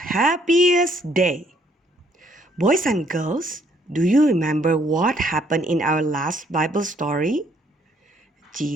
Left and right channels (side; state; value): both; normal; correlation 0.66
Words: Day. Boys and girls, do you remember what happened in our last Bible story?